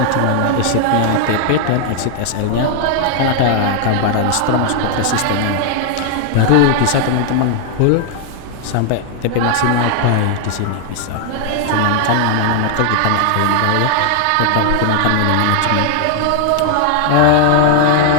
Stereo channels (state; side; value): different; both; correlation 0.00